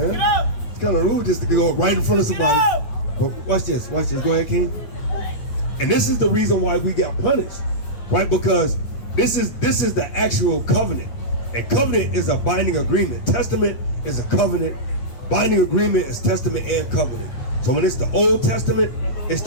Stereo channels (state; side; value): late; right; 8.9 ms